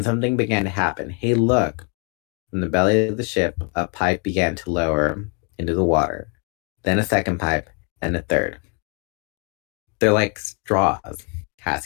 something began to happen. Hey, look! From the belly of the ship, a pipe began to lower into the water. Then a second pipe, and a third. They're like straws,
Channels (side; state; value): right; quieter; 37.3 dB